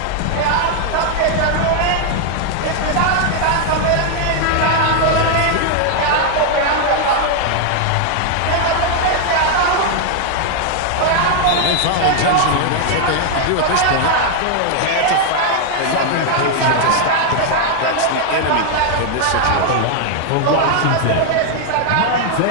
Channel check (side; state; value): both; different; correlation 0.00